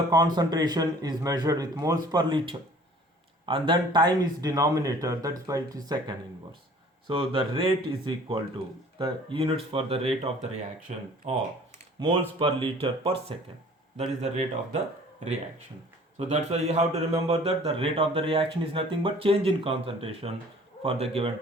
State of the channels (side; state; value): both; normal; correlation 0.51